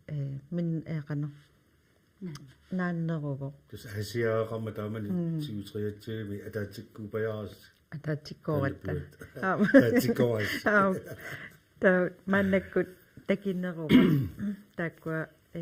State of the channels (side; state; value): both; identical; correlation 1.00